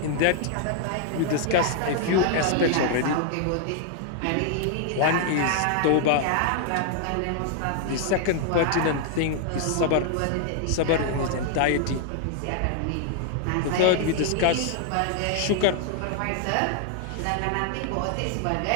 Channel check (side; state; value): both; different; correlation 0.00